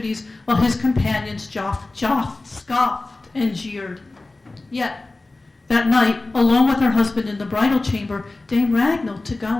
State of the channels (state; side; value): quieter; right; 3.1 dB